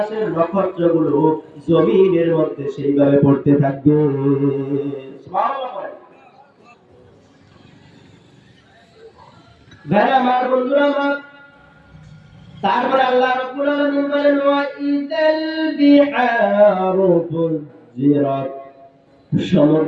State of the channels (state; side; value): identical; both; correlation 1.00